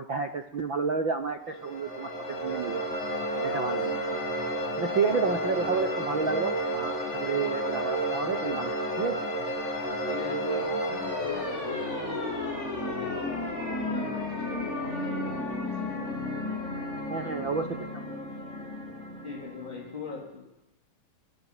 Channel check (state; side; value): late; left; 3.4 ms